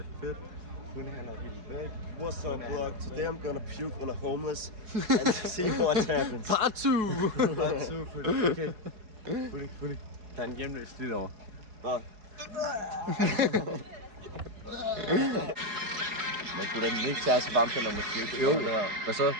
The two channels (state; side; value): late; left; 4.6 ms